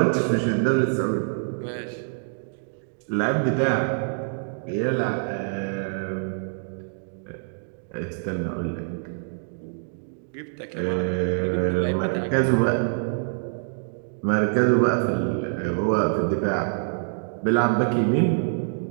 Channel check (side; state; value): left; silent; digital silence